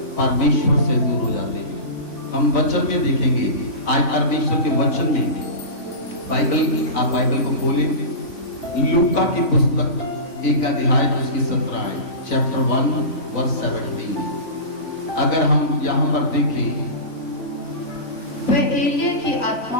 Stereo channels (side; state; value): right; late; 3.5 ms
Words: परमेश्वर से दूर हो जाते हैं। हम वचन में देखेंगे आज परमेश्वर के वचन में, आप बाइबल को खोलें, लूका की पुस्तक 1 अध्याय उसकी 17 है, चैप्टर 1 वर्स 17। अगर हम यहाँ पर देखें, वह एलिया की आत्मा